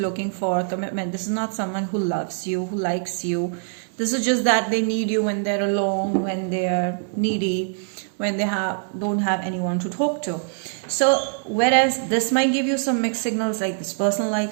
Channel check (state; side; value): silent; left; digital silence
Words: for commitment. This is not someone who loves you, who likes you. This is just that they need you when they're alone, when they're needy, when they don't have anyone to talk to. So whereas this might give you some mixed signals, like this person